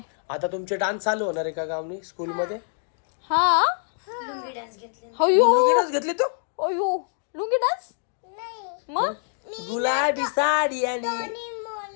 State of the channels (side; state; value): right; silent; digital silence